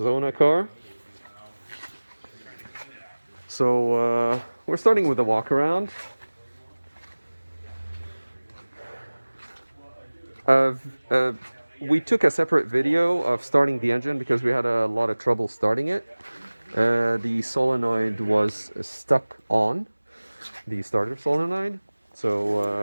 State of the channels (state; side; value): inverted; both; correlation -1.00